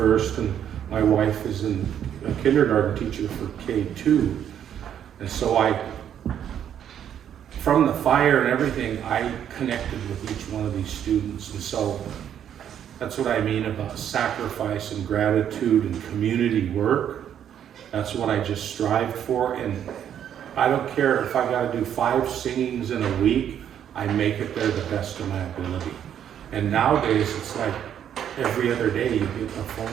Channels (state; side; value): quieter; left; 9.6 dB